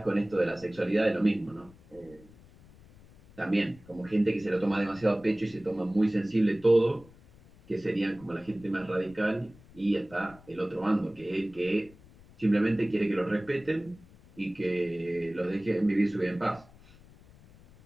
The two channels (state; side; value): noise; left; rumble, 24 dB below the sound